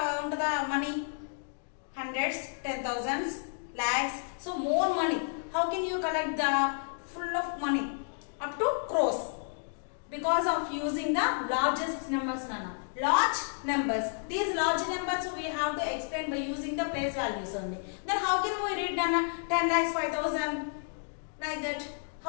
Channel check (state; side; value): silent; right; digital silence